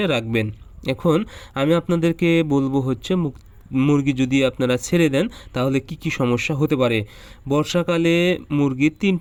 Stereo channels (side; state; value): both; identical; correlation 1.00